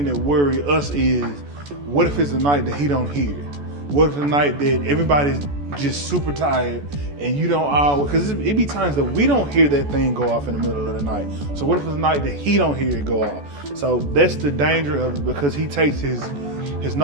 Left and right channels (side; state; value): left; late; 14 ms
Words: that worry us is, what if it's a night that he don't hear? What if the night that everybody's just super tired and you don't always, because it be times that we don't hear that thing go off in the middle of the night. So what if it's a night that he don't hear it go off? So that's the danger of it, because he takes his